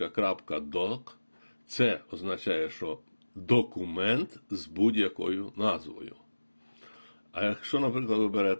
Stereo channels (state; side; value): inverted; both; correlation -1.00